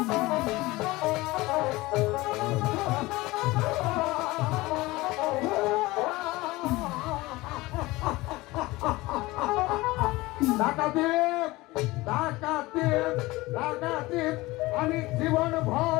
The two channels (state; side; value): quieter; right; 20.4 dB